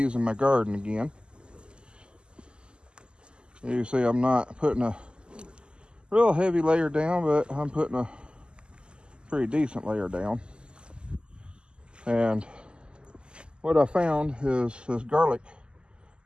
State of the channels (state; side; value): late; left; 0.049 ms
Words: my garden again. You see I'm not putting a real heavy layer down, but I'm putting a pretty decent layer down. And what I found is this garlic